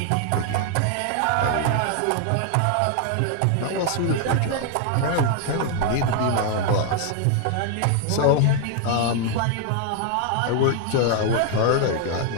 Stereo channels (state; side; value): different; both; correlation 0.00